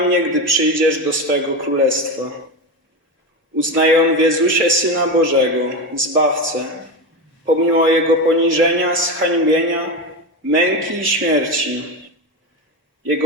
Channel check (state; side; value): normal; both; correlation 0.18